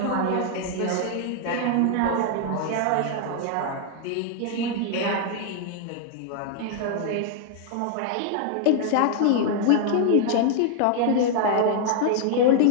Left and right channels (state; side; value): different; both; correlation 0.00